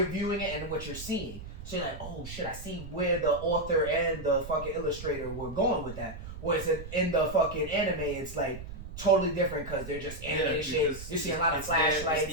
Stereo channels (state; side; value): noise; right; rumble, 11 dB below the sound